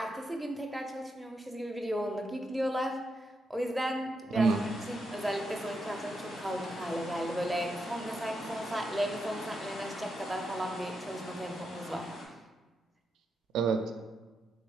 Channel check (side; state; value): both; normal; correlation 0.83